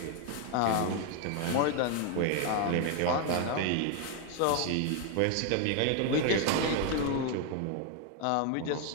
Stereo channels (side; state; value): both; different; correlation 0.01